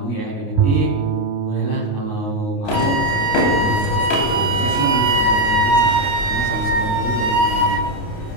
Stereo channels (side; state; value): right; late; 29 ms